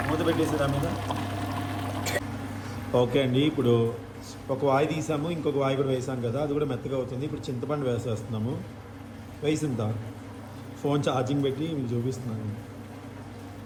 మూత పెట్టేసారు ఆ మీద. ఓకే అండి, ఇప్పుడు ఒక వాయి తీసాము, ఇంకొక వాయి కూడా వేసాం కదా, అది కూడా మెత్తగా అవుతుంది. ఇప్పుడు చింతపండు వేసేస్తున్నాము. వేసిందా ఫోన్ ఛార్జింగ్ పెట్టి మీకు చూపిస్తున్నాను.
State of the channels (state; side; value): identical; both; correlation 1.00